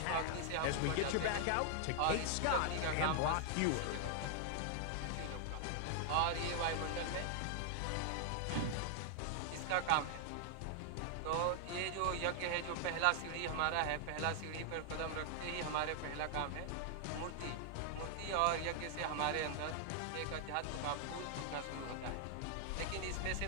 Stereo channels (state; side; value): different; both; correlation 0.00